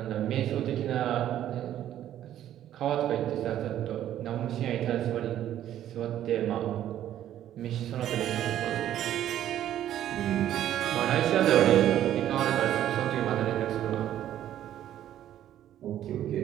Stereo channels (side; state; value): left; quieter; 11.7 dB